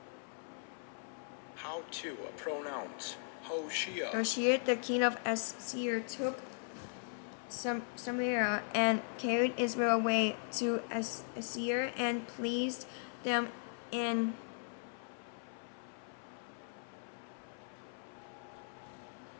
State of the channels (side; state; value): right; silent; 52 dB below the other